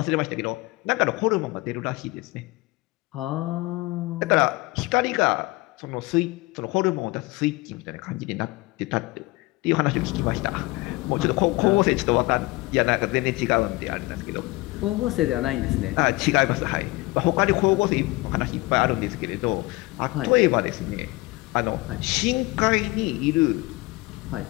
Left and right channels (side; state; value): right; quieter; 22.1 dB